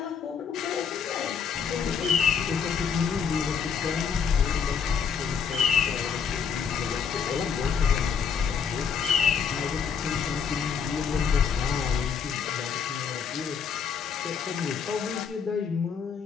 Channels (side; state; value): right; quieter; 6.7 dB